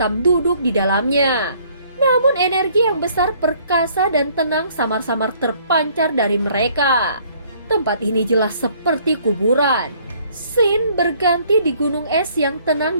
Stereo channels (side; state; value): both; inverted; correlation -0.61